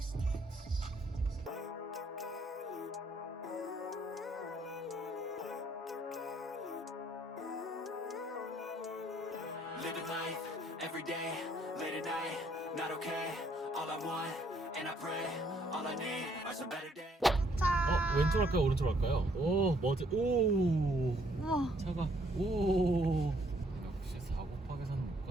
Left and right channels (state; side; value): normal; both; correlation 0.67